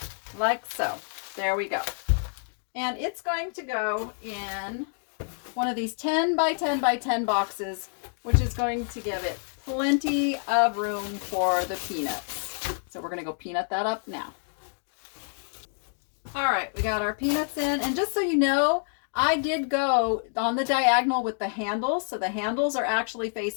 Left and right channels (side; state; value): right; silent; 60 dB below the other